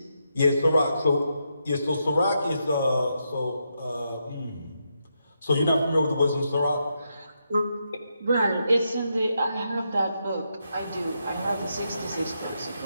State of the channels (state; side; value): inverted; both; correlation -0.82